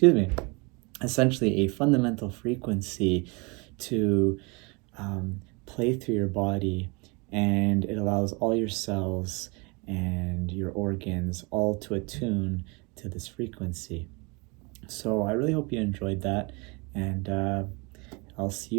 me, essentially a fundamental frequency to play through your body, and it allows all your cells and your organs all to attune to this frequency. So I really hope you enjoyed that, and I'll see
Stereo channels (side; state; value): left; quieter; 29.3 dB